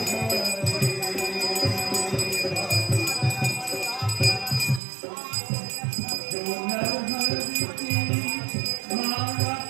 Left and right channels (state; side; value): drops out; left; at 4.8 s